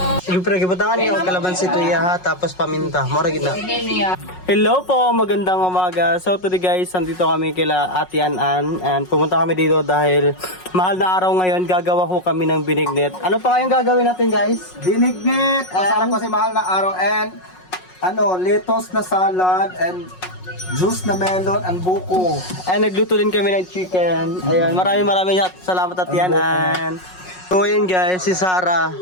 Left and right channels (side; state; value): right; late; 5.5 ms